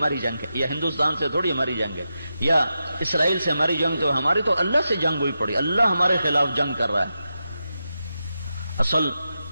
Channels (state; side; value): inverted; both; correlation -0.89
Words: جنگ ہے، یا ہندوستان سے تھوڑی ہماری جنگ ہے، یا اسرائیل سے ہماری جنگ. تو ہماری تو اللہ سے جنگ ہوئی پڑی، اللہ ہمارے خلاف جنگ کر رہا ہے. اصل